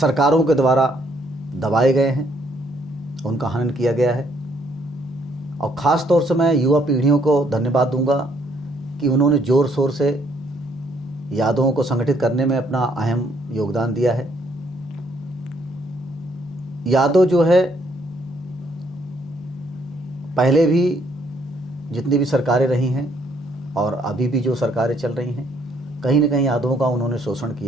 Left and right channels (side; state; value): both; normal; correlation 0.68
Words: के द्वारा दबाए गए हैं, उनका हनन किया गया है। और ख़ास तौर से मैं युवा पीढ़ियों को धन्यवाद दूंगा कि उन्होंने ज़ोर शोर से यादवों को संगठित करने में अपना अहम योगदान दिया है। यादव जो है पहले भी जितनी भी सरकारें रही हैं और अभी भी जो सरकारें चल रही हैं, कहीं न कहीं यादवों का उन्होंने शोषण